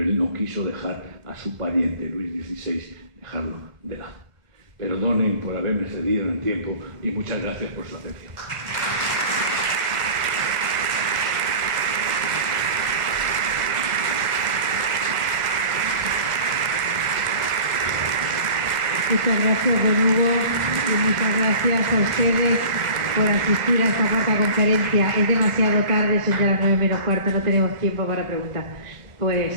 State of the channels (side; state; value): left; late; 1.4 ms